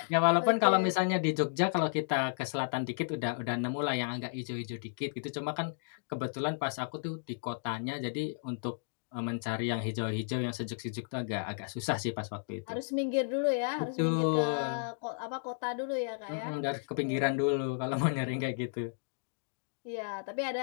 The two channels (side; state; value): right; silent; digital silence